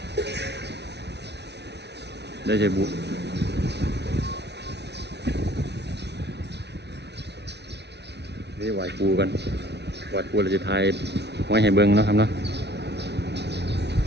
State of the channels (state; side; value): late; left; 0.50 ms